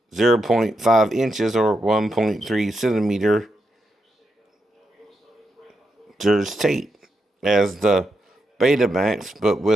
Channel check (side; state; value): both; normal; correlation 0.84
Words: 0.5 inches or 1.3 centimeters tape, as the Betamax, but